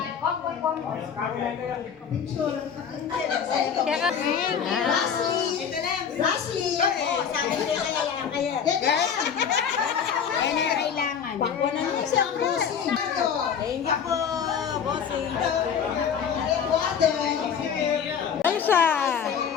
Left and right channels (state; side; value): quieter; right; 7.5 dB